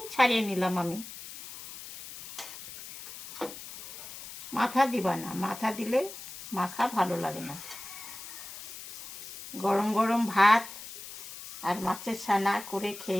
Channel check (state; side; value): noise; left; hiss, 12 dB below the sound